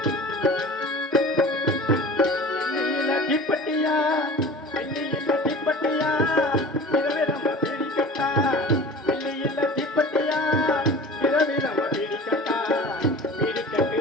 தீப்பட்டியா வெள்ளியில தீப்பட்டியா இரவே நம்ம பிடிக்கட்டா வெள்ளியில தீப்பட்டியா இரவே நம்ம பிடிக்கட்டா பிடிக்கட்டு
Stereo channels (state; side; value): normal; both; correlation 0.39